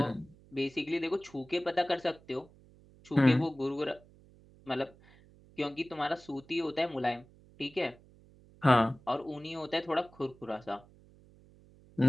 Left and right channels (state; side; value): noise; right; hum, 26 dB below the sound